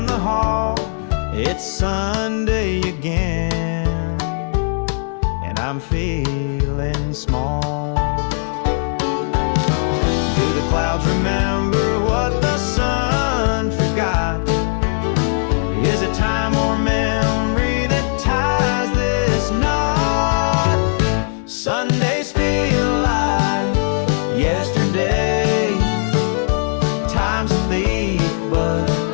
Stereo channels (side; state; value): right; silent; 66 dB below the other